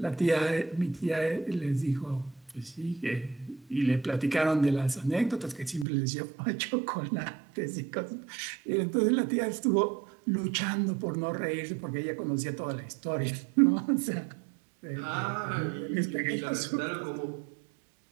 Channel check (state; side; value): drops out; left; at 5.9 s